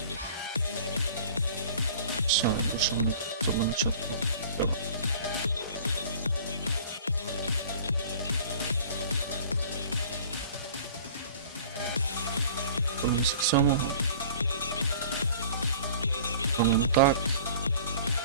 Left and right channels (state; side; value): inverted; both; correlation -0.47